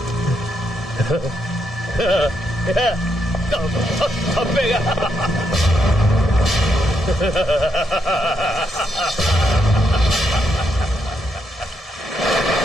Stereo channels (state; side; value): normal; both; correlation 0.79